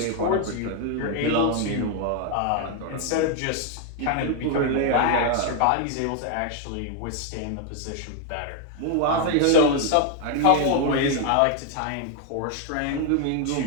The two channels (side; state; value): both; different; correlation 0.00